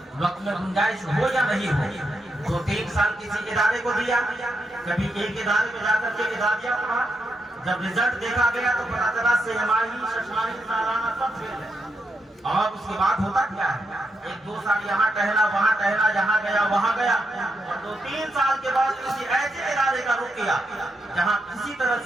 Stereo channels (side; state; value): both; normal; correlation 0.83